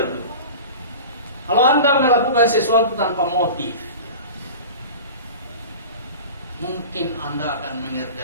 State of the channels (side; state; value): both; inverted; correlation -0.35